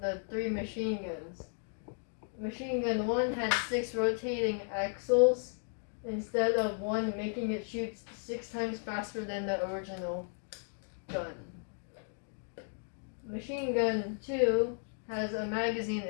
3 machine guns. Machine gun 1 had 6 rotating axles instead of 1, making it shoot 6 times faster than the original gun. Machine gun 2 has a magazine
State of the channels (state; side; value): silent; right; 55 dB below the other